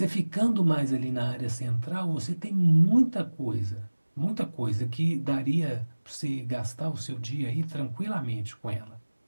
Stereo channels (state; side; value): inverted; both; correlation -1.00